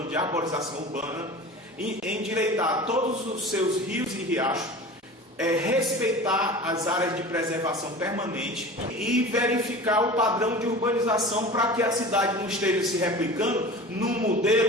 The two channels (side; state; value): both; normal; correlation 0.36